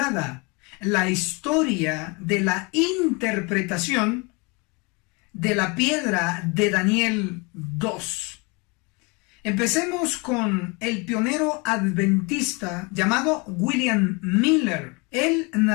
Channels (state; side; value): quieter; right; 29.2 dB